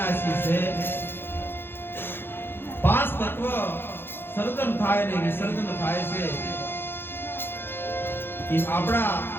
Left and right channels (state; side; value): late; right; 0.10 ms